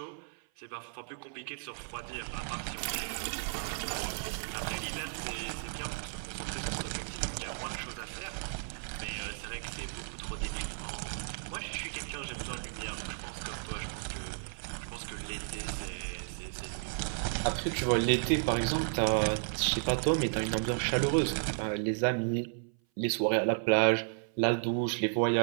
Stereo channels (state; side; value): silent; left; 55 dB below the other